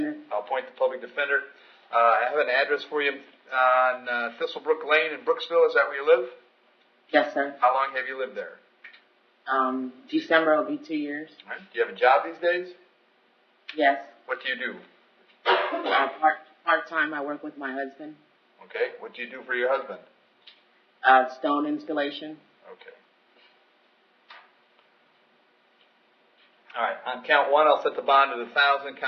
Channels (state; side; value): identical; both; correlation 1.00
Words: I'll appoint the public defender. I have an address for you on Thistlebrook Lane in Brooksville. Is that where you live? Yes, sir. How long have you lived there? December will be 2 years. All right. Do you have a job these days? Yes. What do you do? Part-time, I work with my husband. Okay. What do you do for your husband? Stone installation. Okay. All right. On count 1, I'll set the bond at $1,000.